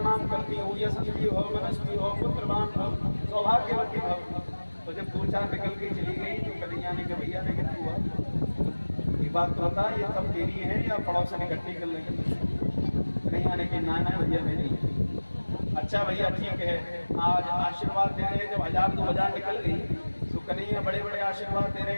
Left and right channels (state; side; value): inverted; both; correlation -1.00